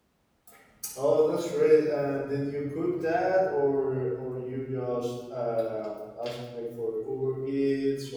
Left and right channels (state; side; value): identical; both; correlation 1.00